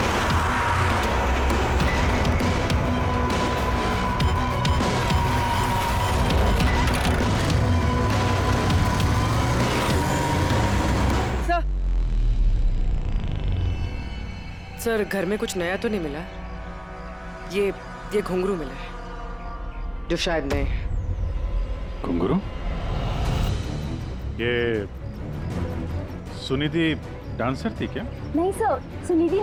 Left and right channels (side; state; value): both; identical; correlation 1.00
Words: सर, घर में कुछ नया तो नहीं मिला? ये घुंघरू मिला है, जो शायद नए हैं। घुंघरू? ये सुनिधि डांसर थी क्या? नहीं सर, सुनिधि